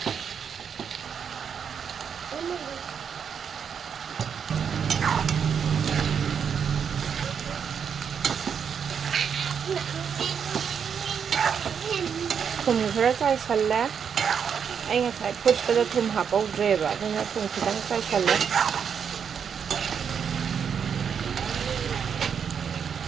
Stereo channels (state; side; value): quieter; left; 7.2 dB